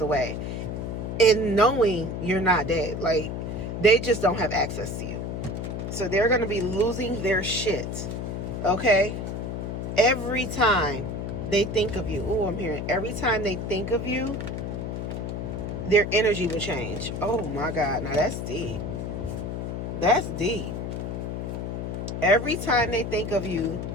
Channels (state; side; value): noise; left; hum, 4 dB below the sound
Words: away, and knowing you're not dead. Like, they just don't have access to you, so they're gonna be losing their shit. Okay, every time they think of you. Oh, I'm hearing every time they think of you, their energy will change. Oh my God. Now that's deep. That's deep. Every time they think of you,